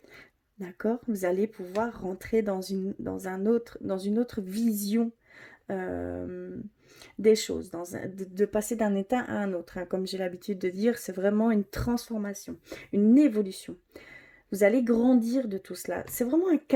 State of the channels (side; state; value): both; identical; correlation 1.00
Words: d'accord? Vous allez pouvoir rentrer dans une autre vision des choses, de passer d'un état à un autre. Hein. Comme j'ai l'habitude de dire, c'est vraiment une transformation, une évolution. Vous allez grandir de tout cela. C'est vraiment un